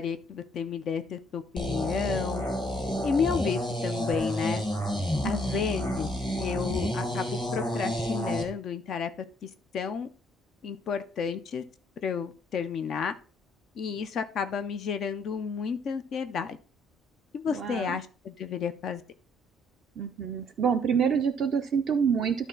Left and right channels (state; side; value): normal; both; correlation 0.65